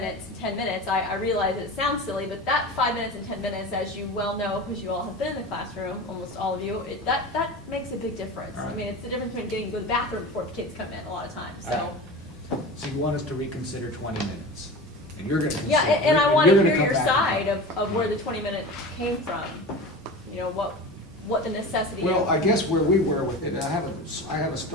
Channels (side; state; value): both; normal; correlation 0.31